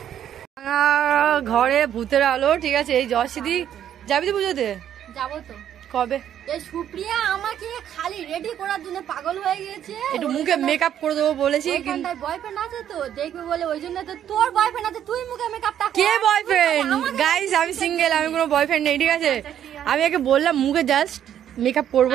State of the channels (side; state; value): left; quieter; 10.2 dB